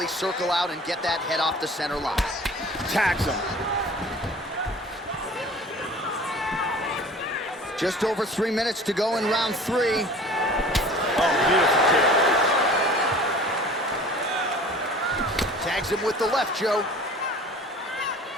circle out and get that head off the center line. Tags him. Just over 3 minutes to go in round three. Oh, beautiful kick. Tags him with the left, Joe.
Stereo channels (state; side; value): normal; both; correlation 0.45